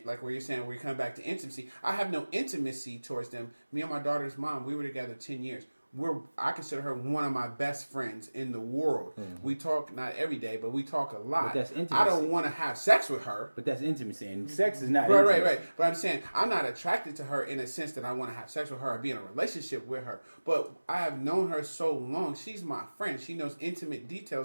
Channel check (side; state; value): both; inverted; correlation -1.00